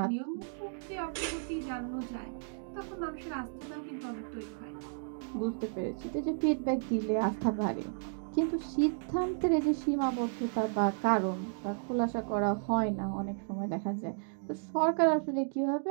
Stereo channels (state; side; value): silent; left; digital silence